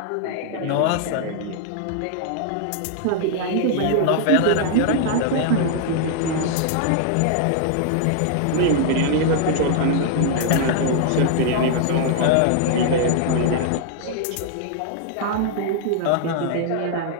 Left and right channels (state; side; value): different; both; correlation -0.01